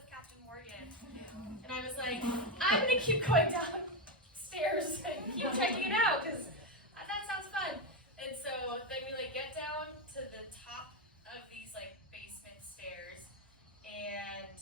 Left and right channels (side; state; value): both; normal; correlation 0.08